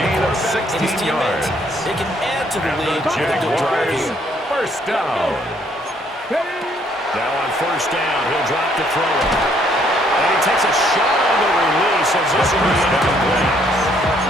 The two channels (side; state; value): both; normal; correlation 0.67